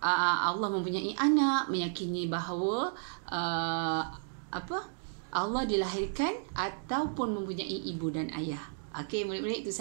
Allah mempunyai anak, meyakini bahawa Allah dilahirkan ataupun mempunyai ibu dan ayah. Okey, murid-murid, itu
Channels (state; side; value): silent; left; digital silence